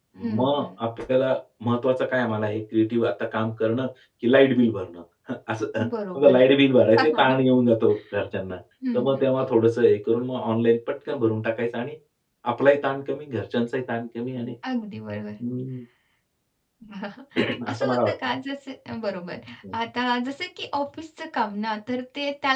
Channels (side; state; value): both; identical; correlation 1.00